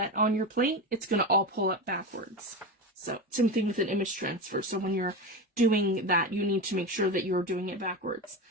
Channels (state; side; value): normal; both; correlation 0.21